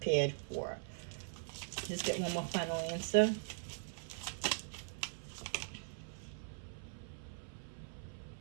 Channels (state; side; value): silent; left; 50 dB below the other